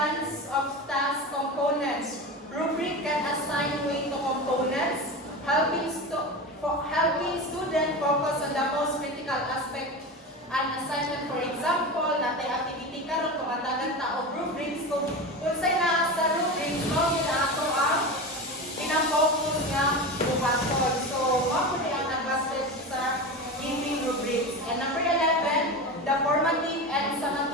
of task components. Rubric can assign weight to components, helping student focus on the most critical aspect and assignment. For example, natay activity karon kumatagan ta og rubrics kung unsay naa sa rubrics mo gid ato ang pinang-focus nga buhaton. So, mao pud ang advantage sa giving rubrics. And number 11, the formative and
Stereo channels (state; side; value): normal; both; correlation 0.25